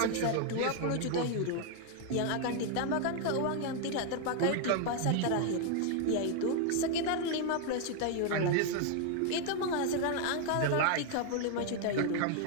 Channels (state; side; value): different; both; correlation 0.00